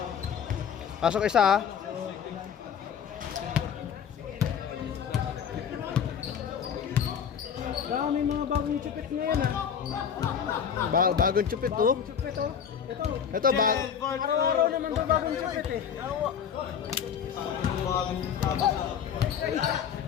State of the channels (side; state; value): right; quieter; 7.8 dB